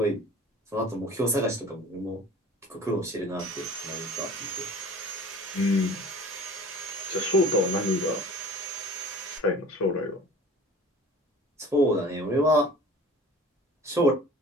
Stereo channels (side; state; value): both; normal; correlation 0.43